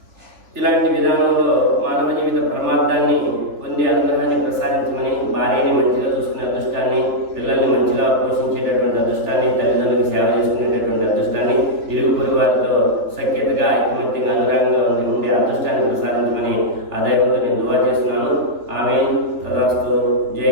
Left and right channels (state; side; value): late; left; 3.6 ms